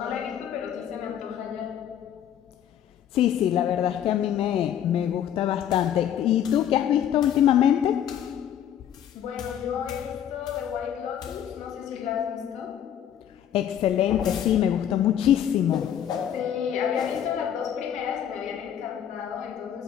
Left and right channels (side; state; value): right; quieter; 9.9 dB